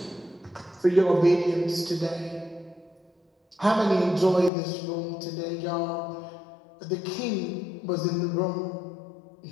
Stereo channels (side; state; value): right; drops out; at 4.5 s